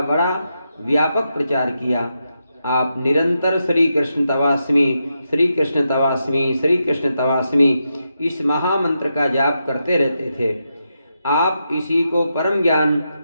बड़ा व्यापक प्रचार किया। आप निरंतर श्री कृष्ण तवास्मी, श्री कृष्ण तवास्मी, श्री कृष्ण तवास्मी इस महामंत्र का जाप करते रहते थे। आप इसी को परम ज्ञान,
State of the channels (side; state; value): both; inverted; correlation -0.85